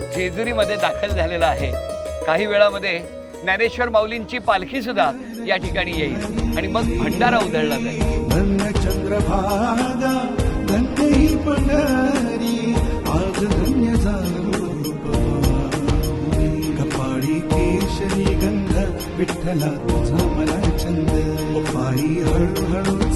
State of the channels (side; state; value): both; identical; correlation 1.00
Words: जेजुरीमध्ये दाखल झालेला आहे. काही वेळामध्ये ज्ञानेश्वर माऊलींची पालखी सुद्धा या ठिकाणी येईल आणि मग भंडारा उधळला जाईल. धन्य चंद्रभागा धन्य ही पंढरी आज धन्य झालो कपाळी केशरी गंध विठ्ठला तुझा मला छंद पायी हळूहळू